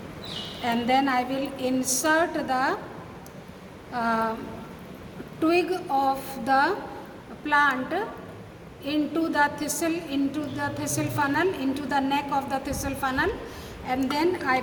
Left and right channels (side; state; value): both; identical; correlation 1.00